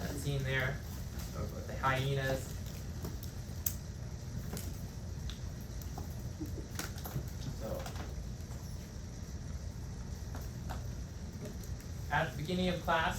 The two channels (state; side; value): identical; both; correlation 1.00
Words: scene there with the hyenas. At the beginning of